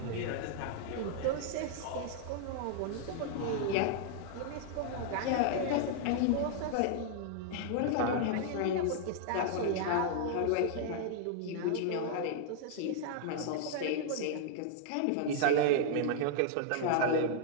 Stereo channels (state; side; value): different; both; correlation -0.01